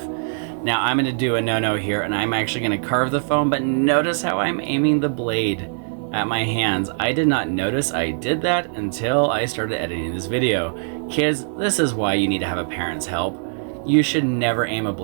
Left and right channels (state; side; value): silent; left; digital silence